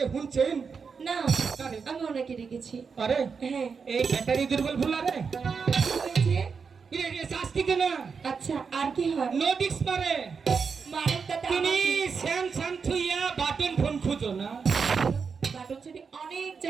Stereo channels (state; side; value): quieter; left; 5.6 dB